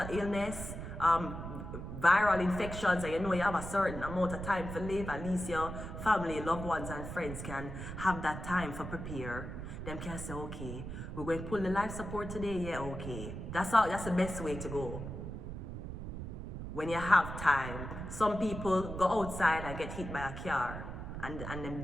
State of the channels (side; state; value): right; noise; rumble, 7 dB below the sound